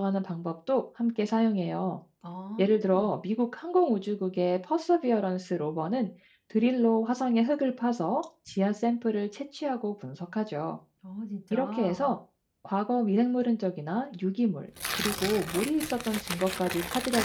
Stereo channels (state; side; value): identical; both; correlation 1.00